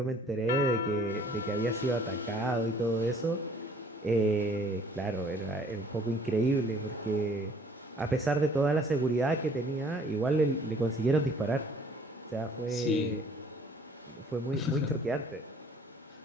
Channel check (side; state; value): both; normal; correlation 0.56